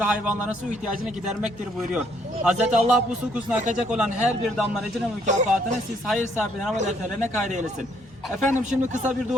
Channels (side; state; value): both; normal; correlation 0.67